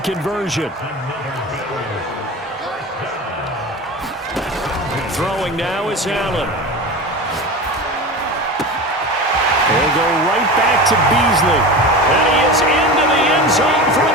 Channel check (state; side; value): normal; both; correlation 0.29